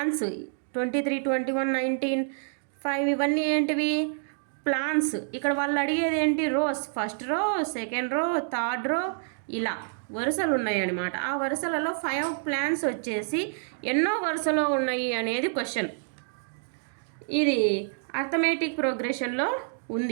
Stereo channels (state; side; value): silent; left; digital silence